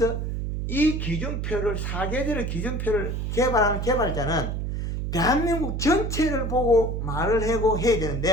이 기준표를 사계절의 기준표를 개발하는 개발자는 대한민국 전체를 보고 말을 하고 해야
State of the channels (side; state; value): right; noise; hum, 2 dB below the sound